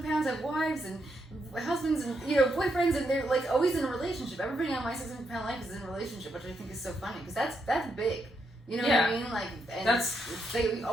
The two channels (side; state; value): both; normal; correlation 0.80